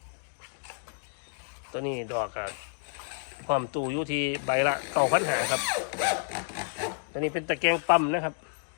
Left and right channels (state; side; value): silent; right; digital silence